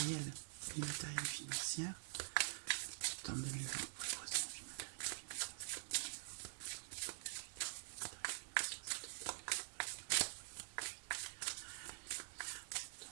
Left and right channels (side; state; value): left; silent; digital silence